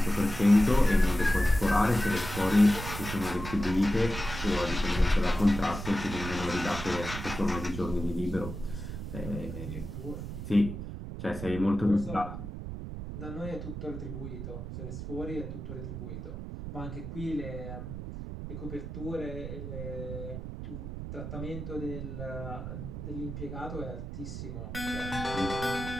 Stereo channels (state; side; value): noise; right; rumble, 7 dB below the sound